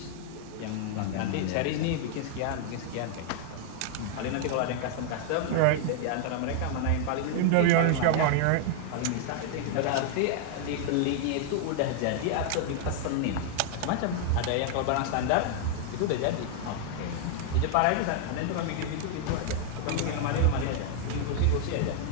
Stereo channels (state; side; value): different; both; correlation 0.00